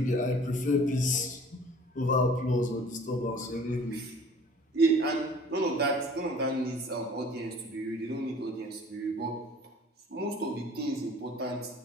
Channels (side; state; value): both; normal; correlation 0.49